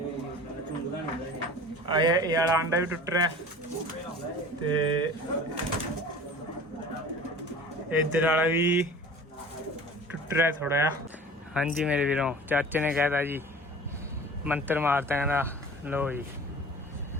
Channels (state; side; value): normal; both; correlation 0.42